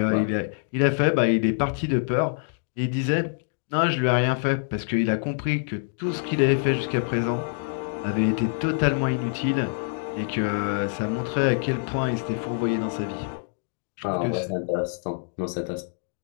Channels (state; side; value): silent; right; digital silence